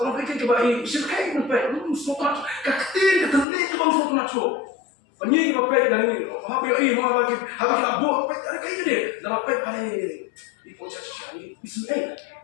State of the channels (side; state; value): right; drops out; at 3.5 s